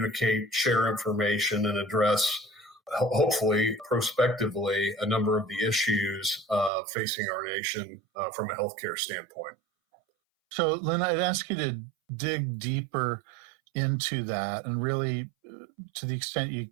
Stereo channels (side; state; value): left; drops out; at 6.7 s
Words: share information, and address, hopefully, prospectively, a number of the issues facing our nation from a healthcare standpoint. So, Lynn, I'd ask you to dig deeper into that and really, to the extent you